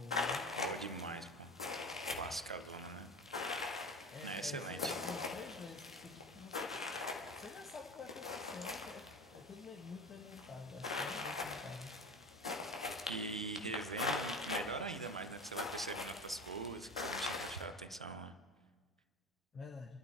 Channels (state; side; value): normal; both; correlation 0.32